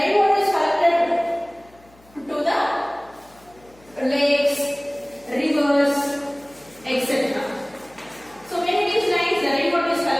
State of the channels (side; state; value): left; noise; hum, 28 dB below the sound